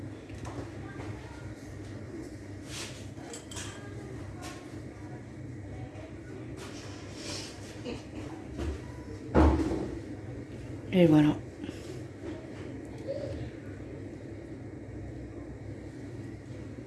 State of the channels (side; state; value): both; identical; correlation 1.00